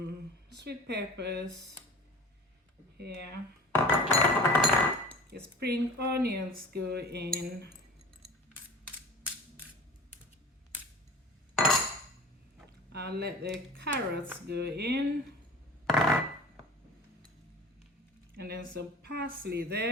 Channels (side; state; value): both; normal; correlation 0.38